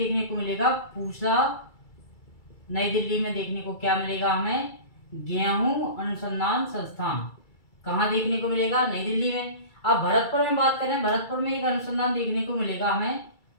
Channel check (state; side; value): late; right; 2.3 ms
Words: को मिलेगा। पूसा, नई दिल्ली में देखने को क्या मिलेगा हमें, गेहूं अनुसंधान संस्थान। कहाँ देखने को मिलेगा, नई दिल्ली में। अब भरतपुर में बात करें, भरतपुर में एक अनुसंधान देखने को मिलेगा हमें,